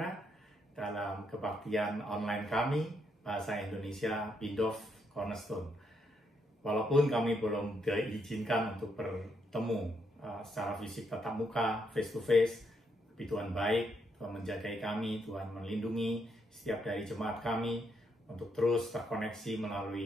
dalam kebaktian online kami Bahasa Indonesia Bindov Cornerstone. Walaupun kami belum diizinkan untuk bertemu secara fisik tatap muka, face to face, tapi Tuhan baik, Tuhan menjagai kami, Tuhan melindungi setiap dari jemaat kami untuk terus terkoneksi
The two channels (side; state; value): both; normal; correlation 0.77